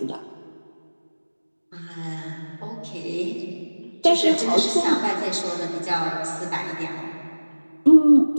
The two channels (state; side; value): inverted; both; correlation -1.00